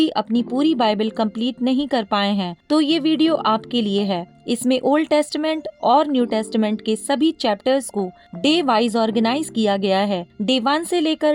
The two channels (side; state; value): both; identical; correlation 1.00